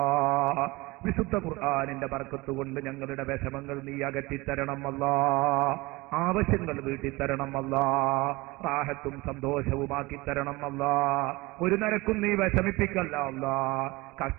വിശുദ്ധ ഖുർആനിന്റെ ബർക്കത്ത് കൊണ്ട് ഞങ്ങളുടെ വിഷമങ്ങൾ നീ അകറ്റിത്തരണം അല്ലാ. ആവശ്യങ്ങൾ വീട്ടിത്തരണം അല്ലാ. റാഹത്തും സന്തോഷവുമാക്കി തരണം അല്ലാ. ഒരു നിരക്കും നീ വിഷമിപ്പിക്കല്ല അല്ലാ,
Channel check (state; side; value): quieter; left; 22.5 dB